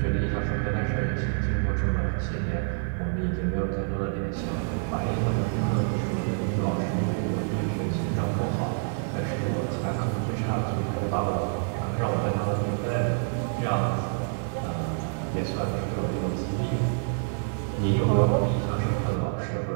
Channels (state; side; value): silent; left; 60 dB below the other